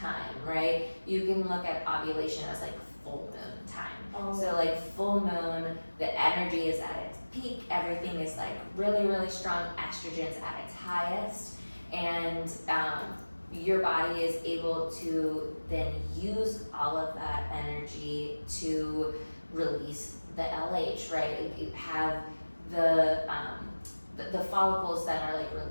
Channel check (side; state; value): both; inverted; correlation -1.00